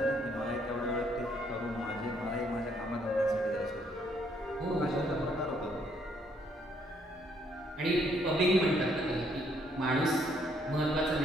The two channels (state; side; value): normal; both; correlation 0.69